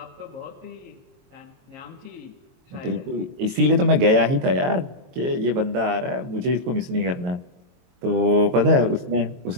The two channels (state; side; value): late; left; 22 ms